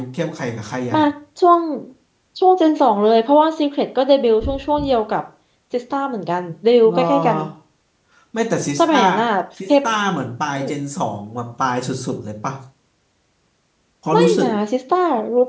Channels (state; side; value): identical; both; correlation 1.00